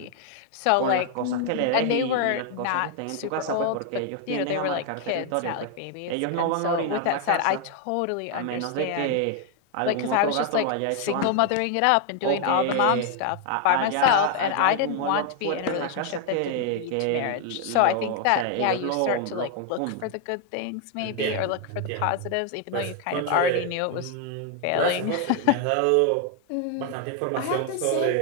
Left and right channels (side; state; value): both; different; correlation 0.00